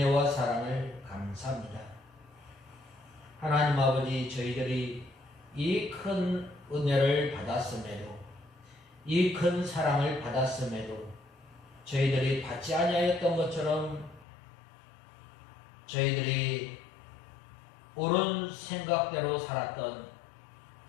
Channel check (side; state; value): right; drops out; at 14.2 s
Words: 사랑을 감사합니다. 하나님 아버지, 저희들이 이 큰 은혜를 받았음에도 이 큰 사랑을 받았음에도 저희들이 받지 아니하였던 것처럼 저희들이 옳은 생각대로 살았던